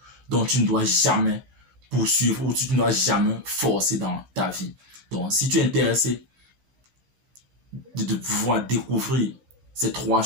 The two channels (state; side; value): late; left; 15 ms